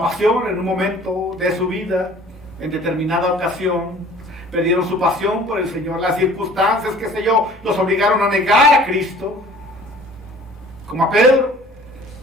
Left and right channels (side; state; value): both; normal; correlation 0.49